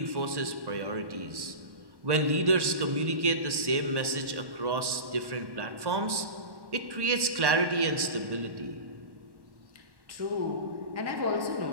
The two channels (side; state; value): left; late; 1.1 ms